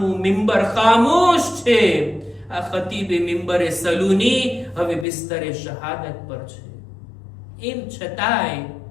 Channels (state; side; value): drops out; right; at 5.1 s